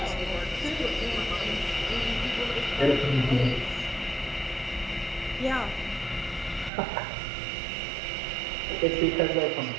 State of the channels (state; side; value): drops out; left; at 6.7 s